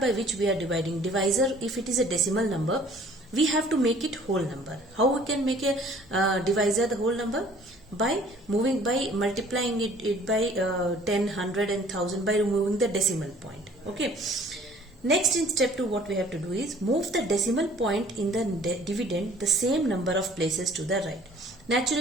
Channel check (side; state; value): both; normal; correlation 0.54